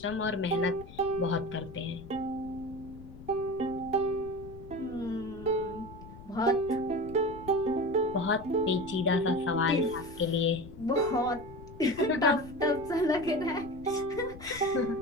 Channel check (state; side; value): noise; left; rumble, 16 dB below the sound